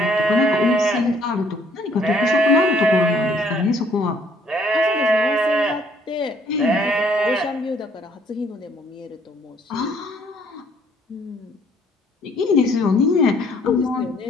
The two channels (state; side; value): normal; both; correlation 0.63